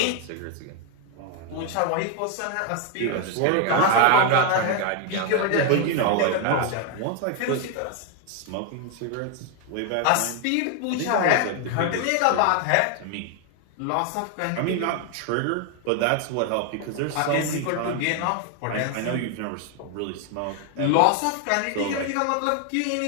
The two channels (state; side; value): different; both; correlation 0.01